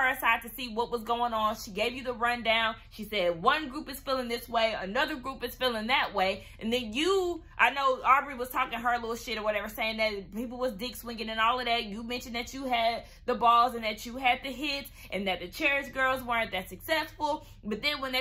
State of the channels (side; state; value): both; identical; correlation 1.00